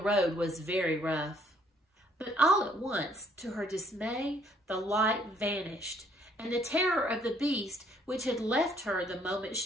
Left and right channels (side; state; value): both; normal; correlation 0.64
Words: was very rough. But all at once, to her dismay, the light vanished, and the terror of the beast, which had left her the moment